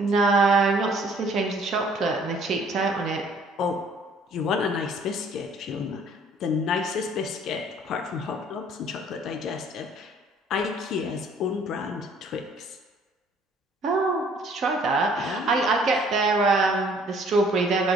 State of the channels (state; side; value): normal; both; correlation 0.58